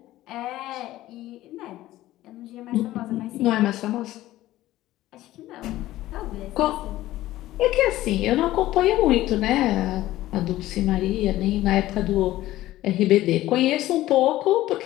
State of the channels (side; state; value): right; quieter; 15.5 dB